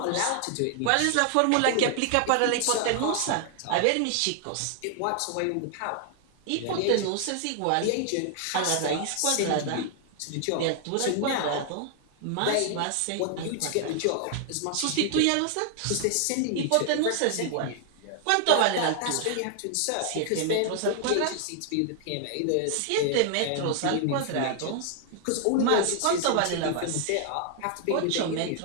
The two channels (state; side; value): different; both; correlation 0.00